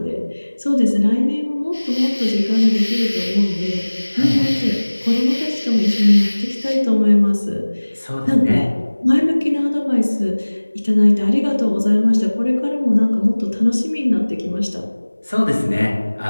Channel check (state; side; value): inverted; both; correlation -1.00